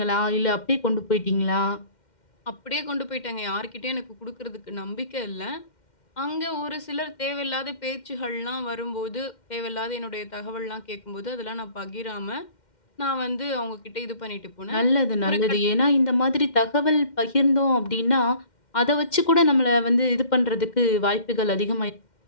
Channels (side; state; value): right; late; 2.1 ms